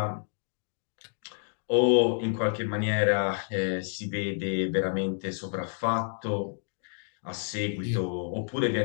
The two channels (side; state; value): right; silent; digital silence